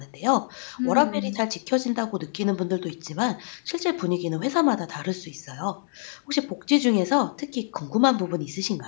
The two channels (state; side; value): silent; right; digital silence